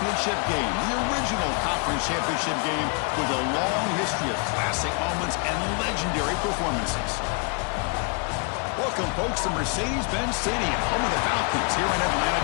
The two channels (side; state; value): right; quieter; 35.6 dB